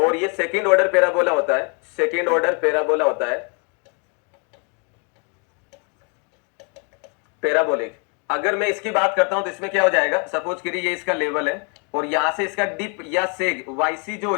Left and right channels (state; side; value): quieter; right; 37.0 dB